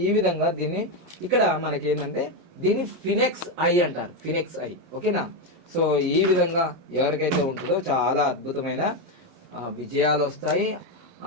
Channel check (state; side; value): late; left; 11 ms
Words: ఈ విధంగా దీన్ని ఇక్కడ మనకి ఏంటంటే దీన్ని ఫినెక్స్ ఐ అంటారు, ఫినెక్స్ ఐ. ఓకేనా? సో ఈ విధంగా ఎవరికైతే ఉంటుందో చాలా అద్భుతమైన విజయాలు వస్తాయి,